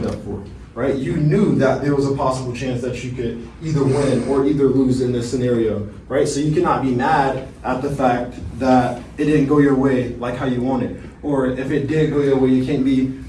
up for, right? You knew that there was a possible chance that you could either win or either lose in this scenario, right? So you cannot be mad at the fact that it didn't go your way like how you wanted. Or if it did go your way, you can't be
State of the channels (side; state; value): both; identical; correlation 1.00